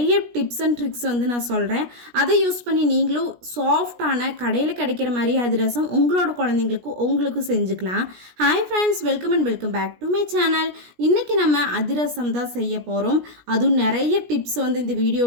டிப்ஸ் அண்ட் ட்ரிக்ஸ் வந்து நான் சொல்கிறேன். அதை யூஸ் பண்ணி நீங்களும் சாஃப்டான கடையில் கிடைக்கிற மாதிரி அதிரசம் உங்களோட குழந்தைங்களுக்கும் உங்களுக்கும் செஞ்சுக்கலாம். Hi friends, welcome and welcome back to my channel. இன்றைக்கி நம்ம அதிரசம் தான் செய்ய போகிறோம். அதுவும் நிறைய டிப்ஸ் வந்து இந்த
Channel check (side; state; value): left; late; 17 ms